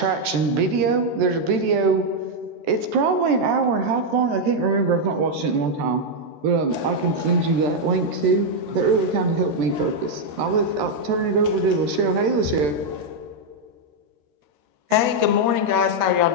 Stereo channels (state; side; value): late; left; 14 ms